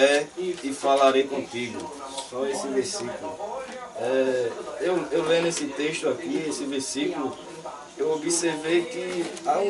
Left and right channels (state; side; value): identical; both; correlation 1.00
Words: e falarei contigo. Só esse versículo. Eu lendo esse texto aqui, esse versículo, eu observei que há